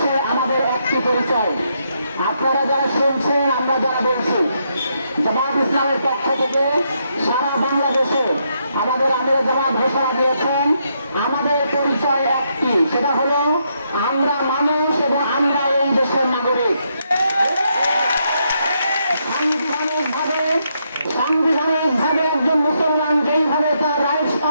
আমাদের একটি পরিচয়। আপনারা যারা শুনছেন, আমরা যারা বলছি, জামাত ইসলামের পক্ষ থেকে সারা বাংলাদেশে আমাদের আমির জামাত ঘোষণা দিয়েছেন, আমাদের পরিচয় একটি, সেটা হলো আমরা মানুষ এবং আমরা এই দেশের নাগরিক। সাংবিধানিকভাবে একজন মুসলমান যেইভাবে তার রাইটস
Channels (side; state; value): both; inverted; correlation -0.78